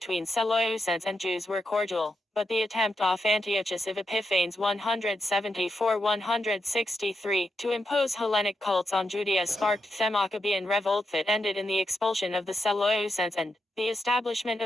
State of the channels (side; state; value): both; normal; correlation 0.85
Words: Seleucids and Jews were cordial, but the attempt of Antiochus of Epiphanes 174-163 to impose Hellenic cults on Judea sparked the Maccabean revolt that ended in the expulsion of the Seleucids and the establishment